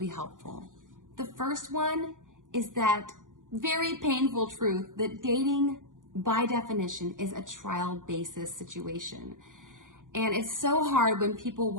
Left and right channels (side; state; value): left; late; 0.88 ms